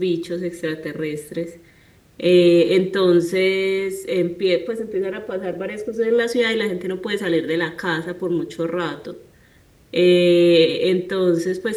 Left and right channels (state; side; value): identical; both; correlation 1.00